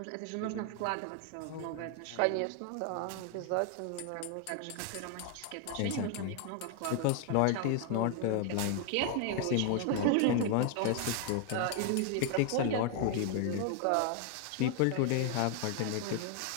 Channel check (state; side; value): different; both; correlation 0.00